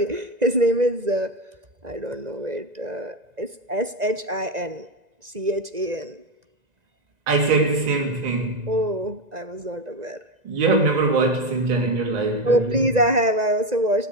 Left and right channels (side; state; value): left; late; 2.0 ms